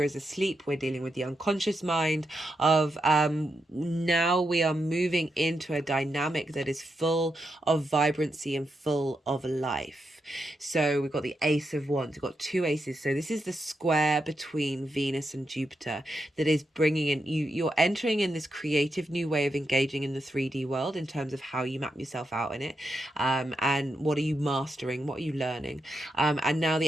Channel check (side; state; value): both; normal; correlation 0.85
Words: is asleep, we're dealing with the unconscious mind of now we are moving into a dynamic that is full of vibrancy and full of life. So we've got the Ace of Wands, we've got two aces. So this is the square between Venus and Jupiter that is bringing in, you're entering in this creative new way of engaging in the 3D world in terms of how you map yourself out in it, and what are you mastering, what are you learning, and now the